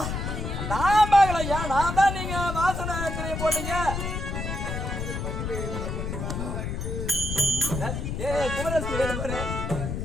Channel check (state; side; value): noise; left; rumble, 3 dB below the sound